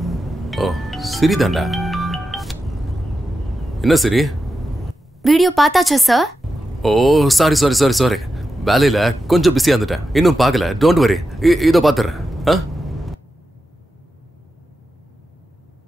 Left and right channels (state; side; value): normal; both; correlation 0.89